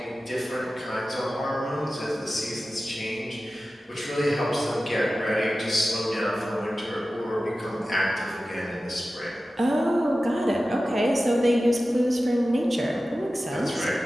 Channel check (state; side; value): normal; both; correlation 0.95